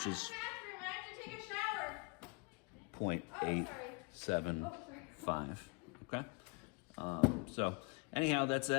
is 0.875. Okay. So anyhow, that's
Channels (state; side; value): quieter; right; 31.2 dB